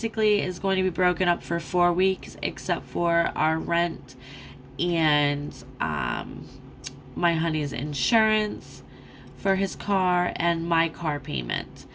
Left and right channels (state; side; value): identical; both; correlation 1.00